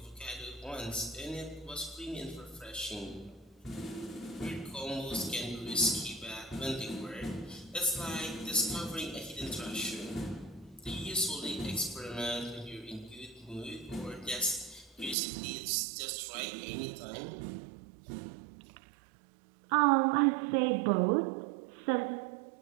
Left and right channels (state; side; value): drops out; left; at 15.2 s